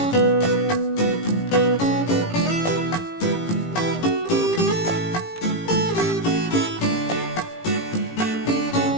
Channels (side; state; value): right; late; 18 ms